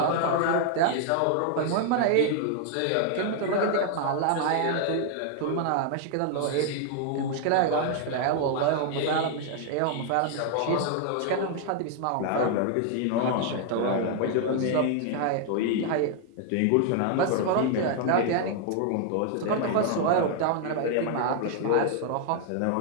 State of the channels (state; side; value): different; both; correlation 0.00